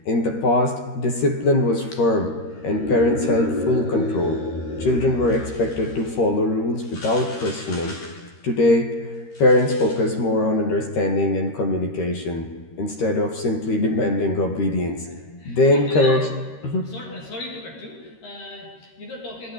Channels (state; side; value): late; right; 13 ms